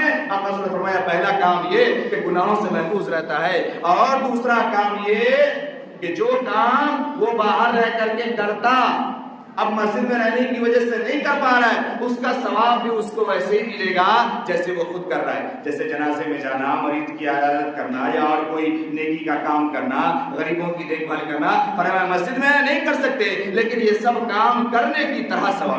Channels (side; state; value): both; identical; correlation 1.00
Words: آپ نے فرمایا پہلا کام یہ کہ گناہوں سے محفوظ رہتا ہے، اور دوسرا کام یہ کہ جو کام وہ باہر رہ کر کے کرتا، اب مسجد میں رہنے کی وجہ سے نہیں کر پا رہا ہے، اس کا ثواب بھی اس کو ویسے ہی ملے گا جیسے وہ خود کر رہا ہے۔ جیسے جنازے میں جانا، مریض کی عیادت کرنا، یا اور کوئی نیکی کا کام کرنا، غریبوں کی دیکھ بھال کرنا، فرمایا مسجد میں نہیں کر سکتے لیکن یہ سب کام کرنے کی طرح